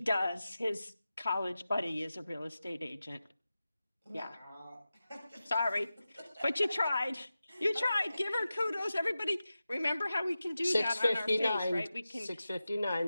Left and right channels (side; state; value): both; inverted; correlation -0.94